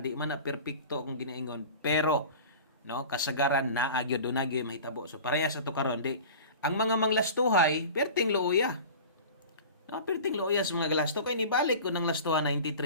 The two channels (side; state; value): both; inverted; correlation -0.37